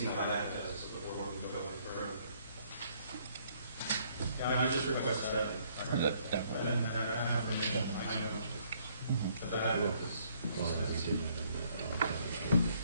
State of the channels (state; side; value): inverted; both; correlation -0.66